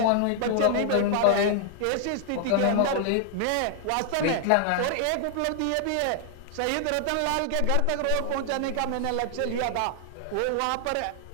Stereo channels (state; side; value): different; both; correlation 0.00